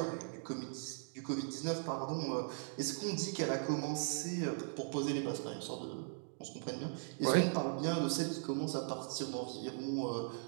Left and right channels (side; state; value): left; silent; digital silence